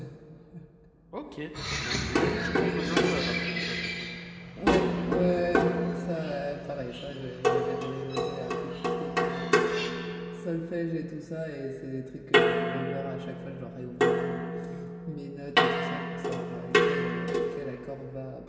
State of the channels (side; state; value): both; identical; correlation 1.00